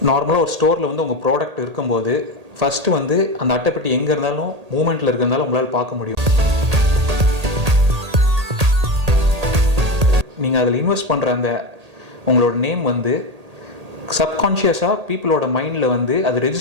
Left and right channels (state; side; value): late; left; 1.8 ms